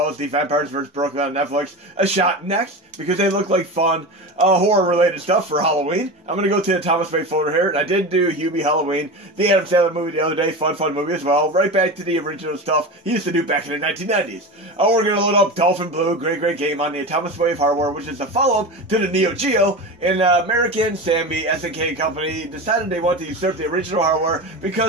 as the Vampires vs. Brooklyn on Netflix a shot next because they look like fun horror-related stuff for Halloween. I'm going to go to the Atomiswave folder here, and I did do Hubie Halloween, the Adam Sandler movie the other day, fun movie as well. Right back to the original stuff he used to do back in the 1990s. We're going to load up Dolphin Blue, great game on the Atomiswave hardware, which is a follow-up to the Neo Geo, and American Sammy SNK company decided they want to usurp the original hardware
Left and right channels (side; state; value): both; normal; correlation 0.26